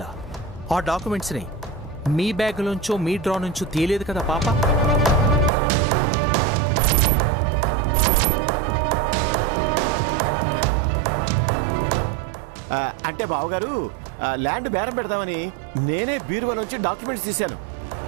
ఆ డాక్యుమెంట్స్ని మీ బ్యాగ్లోంచో మీ డ్రా నుంచో తీయలేదు కదా పాప? అంటే బావగారు ల్యాండ్ బేరం పెడదామని నేనే బీరువా నుంచి డాక్యుమెంట్స్ తీశాను.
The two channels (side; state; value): left; drops out; at 5.5 s